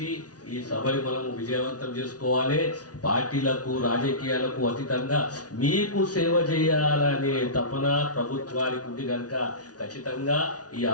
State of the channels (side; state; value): right; late; 0.68 ms